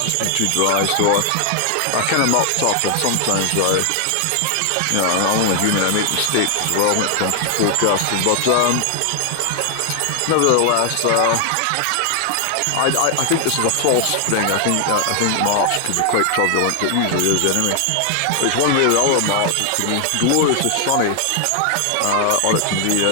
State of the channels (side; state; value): both; different; correlation 0.00